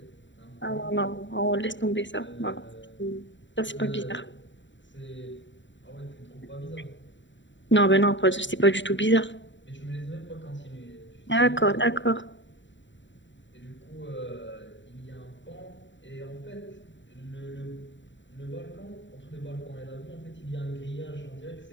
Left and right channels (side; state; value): right; late; 0.54 ms